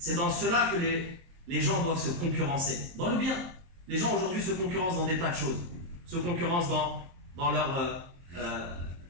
dans cela que les gens doivent se concurrencer. Dans le bien. Les gens aujourd'hui se concurrencent dans des tas de choses. Se concurrencent dans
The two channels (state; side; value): late; left; 23 ms